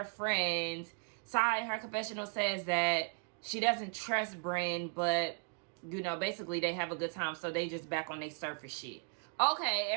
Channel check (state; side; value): quieter; left; 37.8 dB